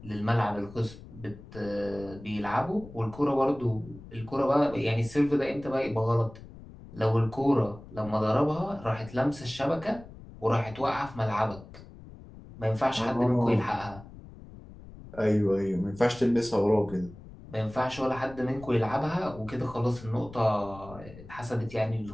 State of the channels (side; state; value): left; noise; rumble, 17 dB below the sound